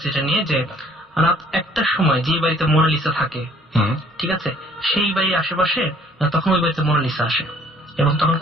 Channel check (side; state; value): both; normal; correlation 0.58